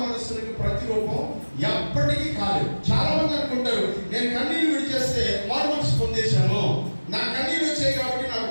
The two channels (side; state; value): both; inverted; correlation -1.00